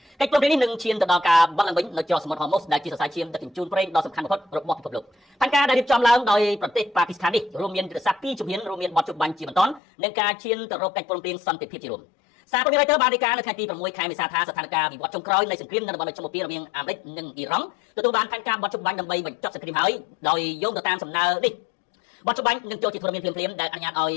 កិច្ចព្រមព្រៀងនេះនឹងឈានទៅដល់ការបាត់ឡើងវិញនៅច្រកសមុទ្រហូម៉ូសដែលជាសរសៃឈាមដឹកជញ្ជូនប្រេងដ៏សំខាន់បំផុតរបស់ពិភពលោកផែនការដែលរៀបចំឡើងដោយប្រទេសប៉ាគីស្ថាននេះរួមមានយុទ្ធសាស្ត្រ2ជំហានរួមមានបោះជំបាញ់ជាបន្តនិងការឈានទៅរកកិច្ចព្រមព្រៀងសន្តិភាពជារួមសារព័ត៌មាន Reuters បានរាយការណ៍នៅថ្ងៃទី6ខែមេសាថាស្ថានភាពវិវត្តចុងក្រោយនៃសង្គ្រាមនៅតំបន់មជ្ឈមបូព៌ារវាងអាមេរិកនិងអ៊ីរ៉ង់ទទួលបានផែនការបោះជំបាញ់ដើម្បីបញ្ចប់សង្គ្រាមហើយដោយយោងទៅតាមសំណើនេះបោះជំបាញ់នឹងចូលជាធរមានភ្លាមៗដែលអនុញ្ញាតឲ្យ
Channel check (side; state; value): right; drops out; at 9.8 s